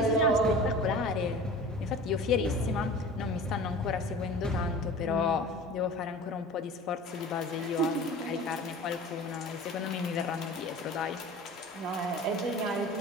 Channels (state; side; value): normal; both; correlation 0.39